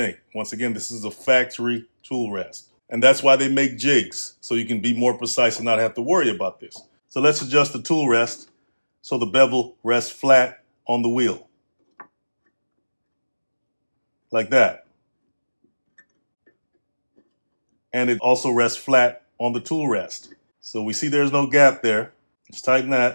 Once again, this is a factory tool rest. And that's why they make jigs, so you can be more precise and not have to worry about this. So let's adjust the tool rest so the bevel rests flat on the wheel. Like that. And it also rests flat on the tool rest. So we see there's no gap there. Let's tighten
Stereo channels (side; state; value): both; inverted; correlation -1.00